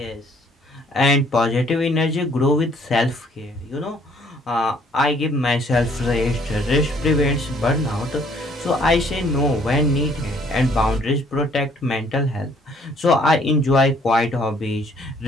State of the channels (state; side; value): normal; both; correlation 0.62